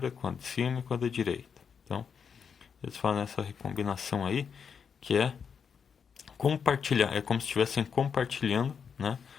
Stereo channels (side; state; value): right; quieter; 6.7 dB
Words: com a de cima e com a da direita. Então, eles fazem essa recombinação aí, que é compartilhar, é como se estivessem compartilhando, né,